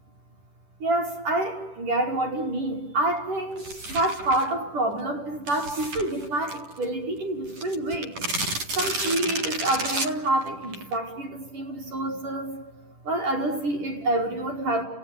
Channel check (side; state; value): left; late; 10 ms